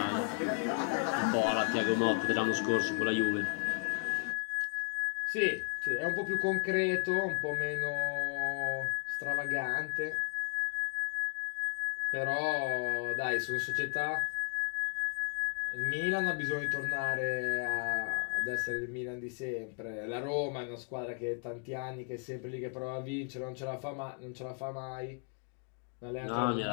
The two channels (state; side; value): quieter; right; 39.2 dB